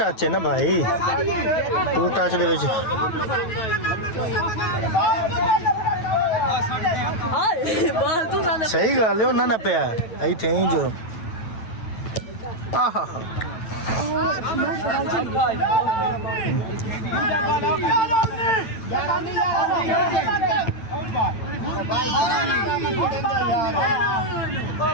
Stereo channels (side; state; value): right; late; 9.1 ms